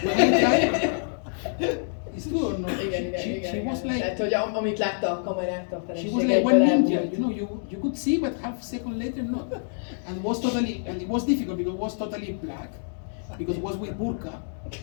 when I tried, it's true or not? Igen. She was like. Tehát, hogy amit látta a kamerát, a feleség She was like one ninja, elbújt. you know. You could see, but half a second later not. And it was difficult because it was totally black, because it was with burqa,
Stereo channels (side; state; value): right; silent; digital silence